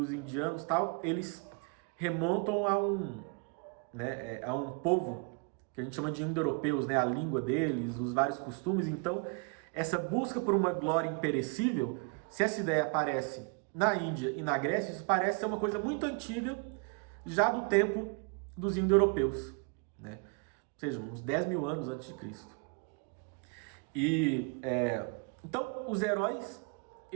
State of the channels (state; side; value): quieter; left; 32.5 dB